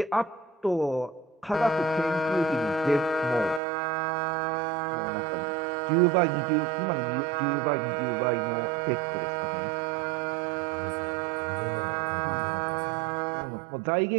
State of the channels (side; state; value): left; drops out; at 3.6 s